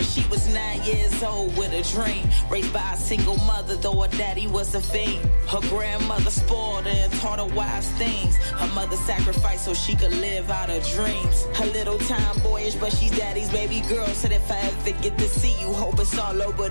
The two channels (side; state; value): both; inverted; correlation -1.00